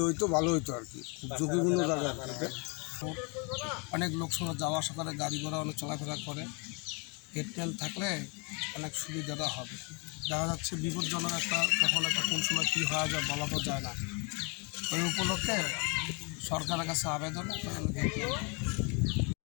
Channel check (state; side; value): quieter; right; 32.7 dB